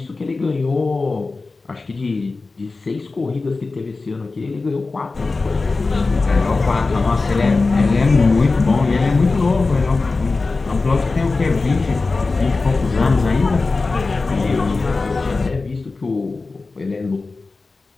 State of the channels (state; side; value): quieter; right; 3.8 dB